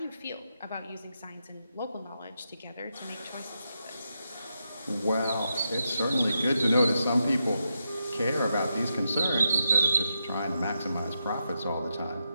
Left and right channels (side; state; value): both; inverted; correlation -0.85